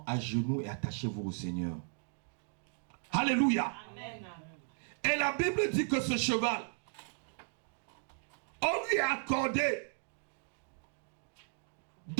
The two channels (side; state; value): left; silent; 54 dB below the other